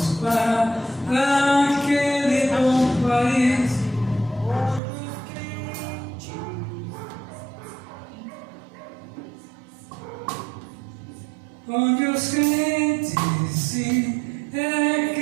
para aquele bom país, onde os crentes sim, é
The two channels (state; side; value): drops out; left; at 4.8 s